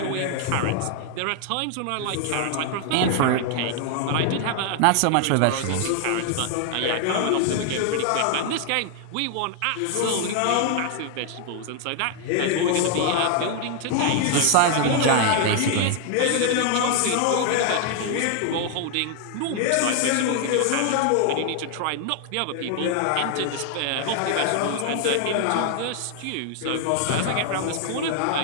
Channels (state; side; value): different; both; correlation 0.00